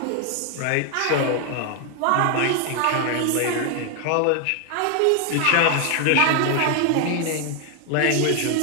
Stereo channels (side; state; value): both; different; correlation 0.01